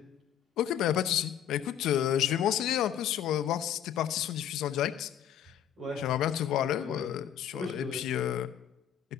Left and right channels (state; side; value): quieter; right; 10.0 dB